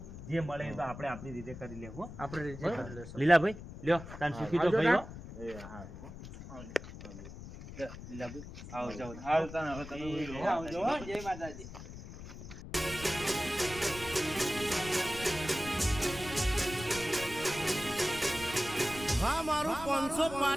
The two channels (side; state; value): left; noise; rumble, 12 dB below the sound